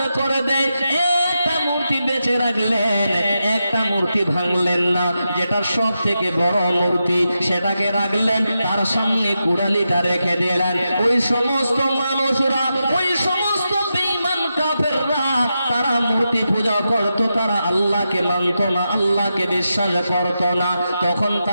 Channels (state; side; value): inverted; both; correlation -0.88